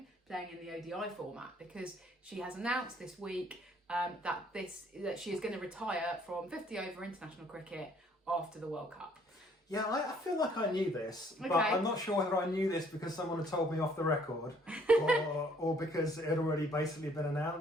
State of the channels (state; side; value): normal; both; correlation 0.62